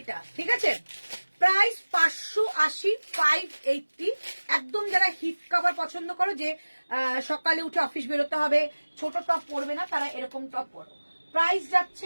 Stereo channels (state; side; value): inverted; both; correlation -1.00